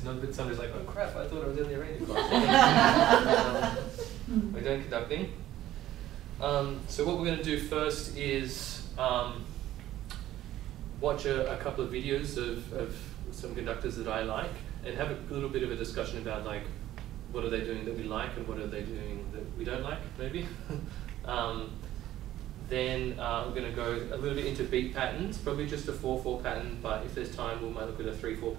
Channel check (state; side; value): quieter; left; 13.8 dB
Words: somebody's like, oh crap, I thought I was in the arranging class. We're doing conducting. So what we're going to do first is watch a couple of videos of some conductors that I like and have a little bit of a discussion about like what are they doing that we like and what are they doing that we don't like, maybe. Then we're going to go a little bit into beat patterns, probably just a 4/4 pattern, but if there's time we might look at a 3/4